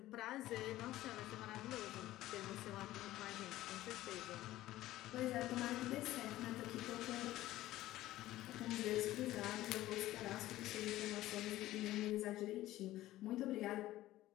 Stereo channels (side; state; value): right; quieter; 15.5 dB